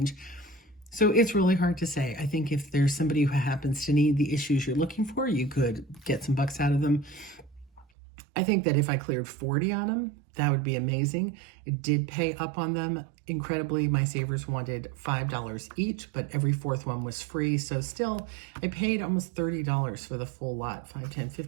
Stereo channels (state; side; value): drops out; left; at 7.9 s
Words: So it's really hard to say. I think if there's somebody who happens to need the issues you're looking for, you could get some bucks out of them. I think that if I cleared 40 on them, that would be amazing. It did pay up on them incredibly. My savers wanted $5 each, but every fourth one was free. So still, I paid almost $30 for the full lot. 5, 10,